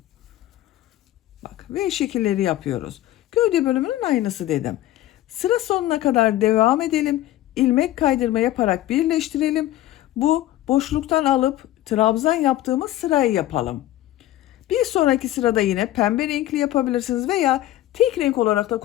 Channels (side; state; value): right; quieter; 14.4 dB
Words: Bak V şekilleri yapıyoruz. Gövde bölümünün aynısı dedim. Sıra sonuna kadar devam edelim. İlmek kaydırma yaparak birleştirelim. Bu boşluktan alıp trabzan yaptığımız sırayı yapalım. Bir sonraki sırada yine pembe renkli yapabilirsiniz veya tek renk olarak da